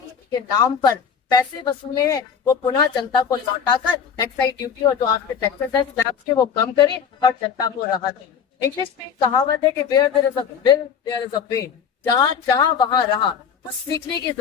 के नाम पर पैसे वसूले हैं वो पुनः जनता को लौटाकर एक्साइज ड्यूटी और जो आपके टैक्सेस है स्लैब्स के वो कम करें और जनता को राहत दें। इंग्लिश में कहावत है कि where there is a will there is a way, जहाँ चाह वहाँ रहा। कुछ सीखने की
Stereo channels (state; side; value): quieter; right; 7.1 dB